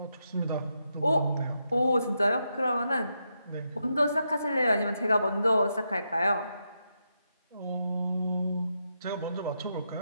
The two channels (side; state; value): both; inverted; correlation -0.83